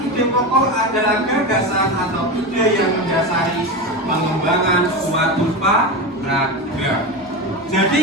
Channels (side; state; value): both; normal; correlation 0.20